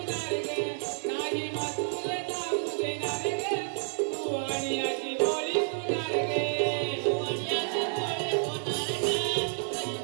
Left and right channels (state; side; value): silent; left; 58 dB below the other